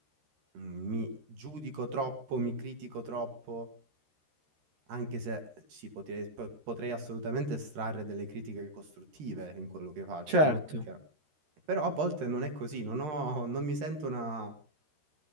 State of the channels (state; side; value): late; left; 13 ms